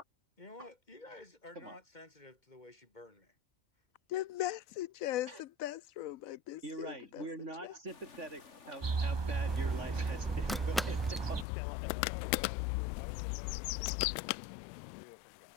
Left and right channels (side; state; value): right; drops out; at 11.5 s